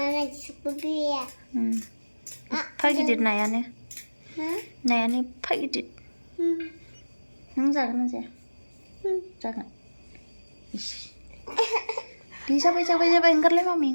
Pagidir nayane Nayane pagidir Nung jagan na zaya Jagan Jabai enggar lay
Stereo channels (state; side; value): inverted; both; correlation -1.00